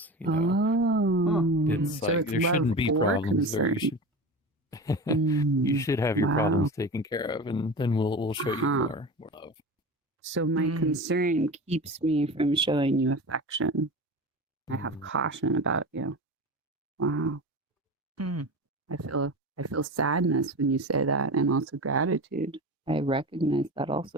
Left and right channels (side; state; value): both; normal; correlation 0.29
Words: You know, it's so like it's there love shouldn't be or problems there. concern. You should have your Wow. problems taken care of, and then we'll show you more love. So my concern keeps me from showing you affection. I have caution about you. Wow. I feel sadness when you say that, and also gratitude. I recognize that